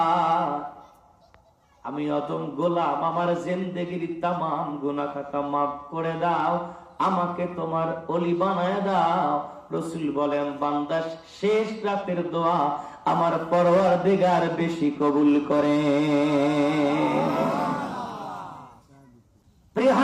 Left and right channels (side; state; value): both; identical; correlation 1.00